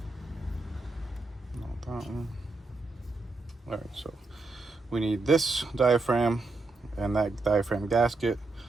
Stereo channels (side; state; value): left; quieter; 3.4 dB